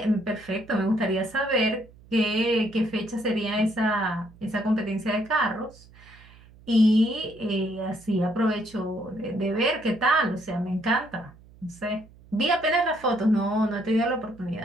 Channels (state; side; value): noise; right; hum, 24 dB below the sound